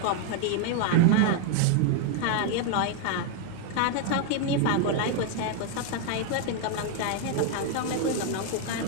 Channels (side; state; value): both; different; correlation 0.00